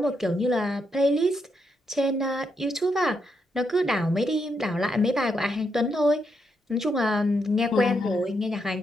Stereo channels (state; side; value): normal; both; correlation 0.80